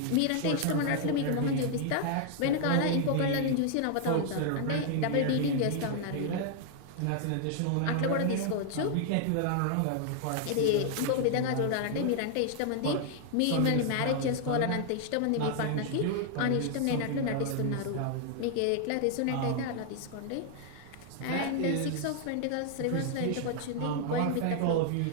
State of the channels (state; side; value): different; both; correlation 0.00